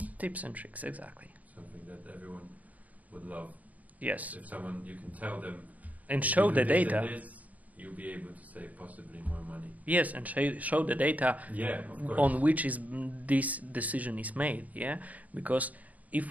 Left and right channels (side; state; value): left; late; 0.073 ms